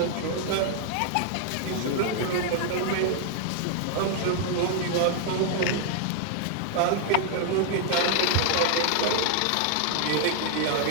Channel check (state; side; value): different; both; correlation 0.00